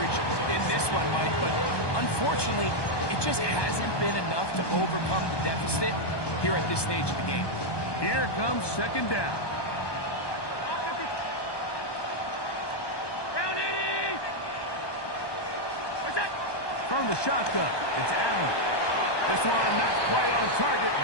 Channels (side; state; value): right; late; 1.2 ms